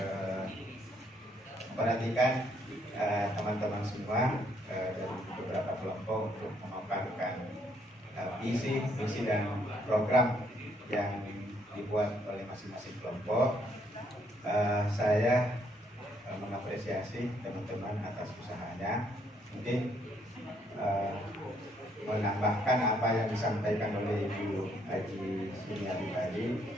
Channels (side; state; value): both; normal; correlation 0.70